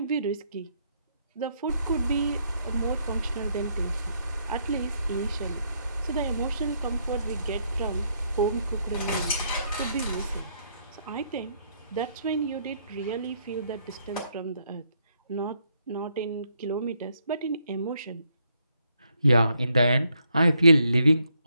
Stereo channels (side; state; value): both; inverted; correlation -0.74